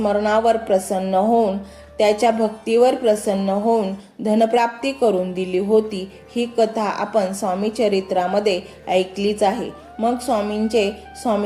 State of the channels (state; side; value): identical; both; correlation 1.00